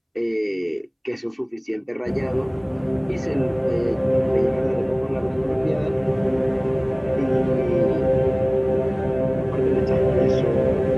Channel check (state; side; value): identical; both; correlation 1.00